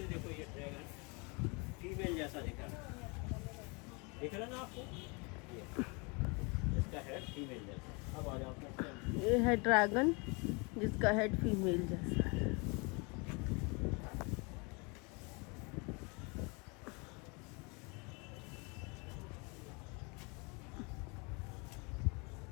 देखो ये ड्रैगन फीमेल जैसा दिख रहा है, दिख रहा ना आपको? ये इसका हेड फीमेल जैसा। अब आ जाओ, ये है ड्रैगन जिसका हेड फीमेल जैसा है।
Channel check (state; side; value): quieter; right; 30.6 dB